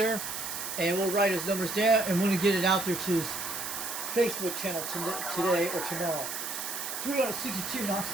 and we'll write his numbers down, and we're going to get it out there to his Facebook channel today or tomorrow. 362,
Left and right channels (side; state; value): right; noise; hiss, 5 dB below the sound